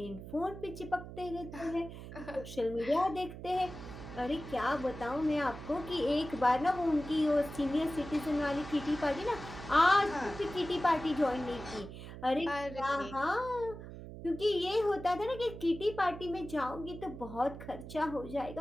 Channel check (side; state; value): right; noise; hum, 12 dB below the sound